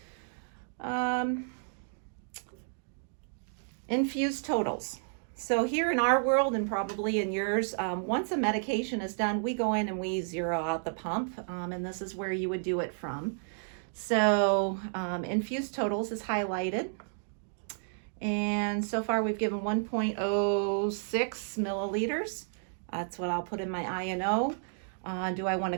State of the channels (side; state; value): left; silent; digital silence